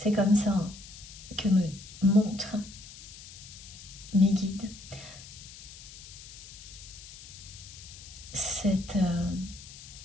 comme ça que me montrent mes guides cette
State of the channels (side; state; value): left; noise; hiss, 16 dB below the sound